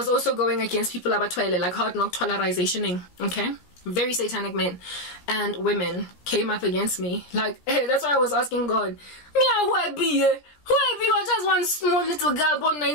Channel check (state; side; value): late; right; 17 ms